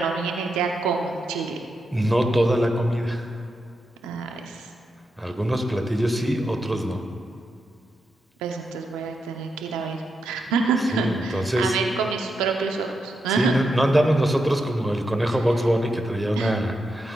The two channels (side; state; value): both; normal; correlation 0.85